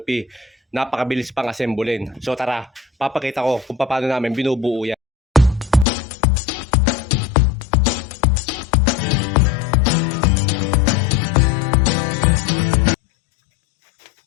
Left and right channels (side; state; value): right; drops out; at 5.9 s